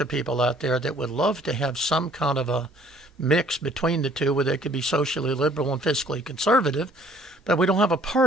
of people out there that would love to have some kind of a mix between the two, where they could be socially liberal and fiscally conservative. But we don't have a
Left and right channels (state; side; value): normal; both; correlation 0.58